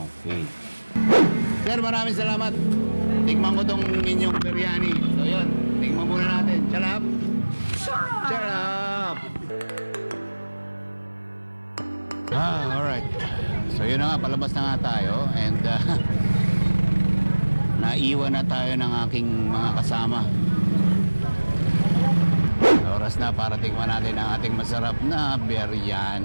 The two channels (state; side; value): inverted; both; correlation -1.00